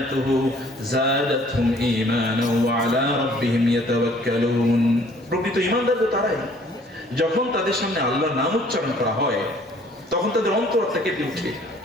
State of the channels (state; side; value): normal; both; correlation 0.57